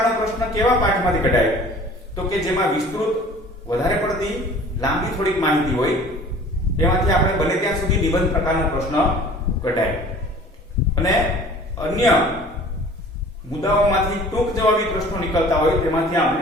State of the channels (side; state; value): both; normal; correlation 0.47